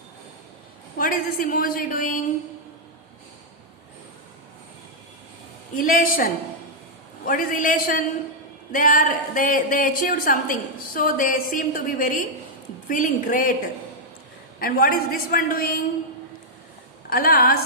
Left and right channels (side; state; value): both; normal; correlation -0.05